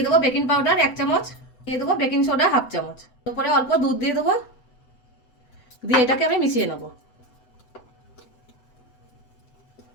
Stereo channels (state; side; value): late; right; 8.0 ms